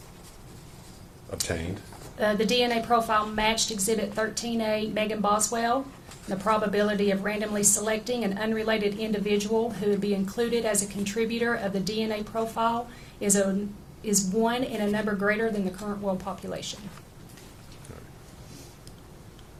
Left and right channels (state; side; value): identical; both; correlation 1.00